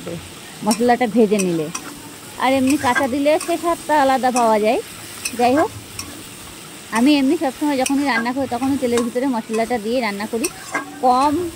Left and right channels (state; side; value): identical; both; correlation 1.00